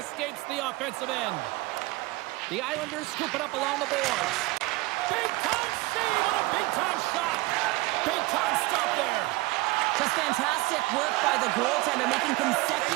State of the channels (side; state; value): left; quieter; 21.7 dB